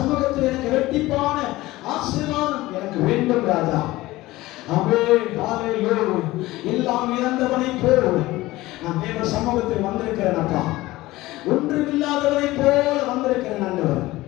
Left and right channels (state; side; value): quieter; right; 18.3 dB